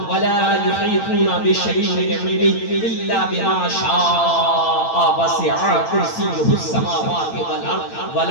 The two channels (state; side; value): late; right; 8.9 ms